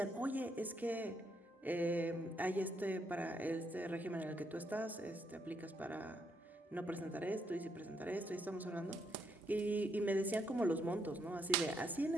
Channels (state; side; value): normal; both; correlation 0.76